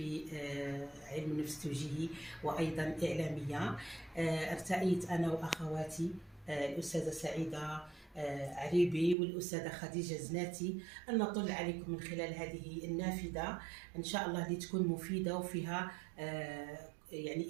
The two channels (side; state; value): left; drops out; at 9.2 s